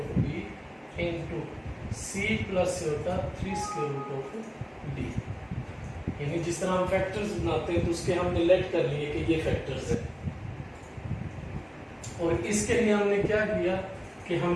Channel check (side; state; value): both; identical; correlation 1.00